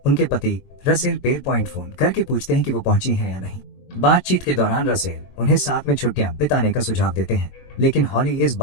उनके पति रसेल पेर पॉइंट फोन करके पूछते हैं कि वो पहुंची हैं या नहीं। बातचीत के दौरान रसेल उन्हें साथ में छुट्टियां बिताने का सुझाव देते हैं, लेकिन हॉली इस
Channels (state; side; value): late; right; 22 ms